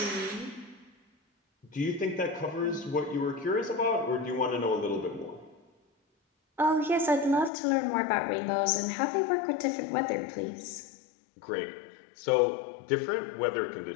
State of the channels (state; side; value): drops out; right; at 7.5 s